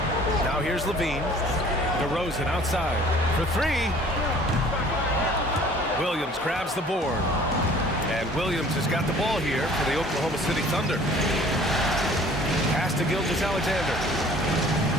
Now here's LaVine. DeRozan outside for 3. Williams grabs the board. And Williams has got the ball here for the Oklahoma City Thunder. Pass to Gilgeous-Alexander.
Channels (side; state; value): both; normal; correlation 0.51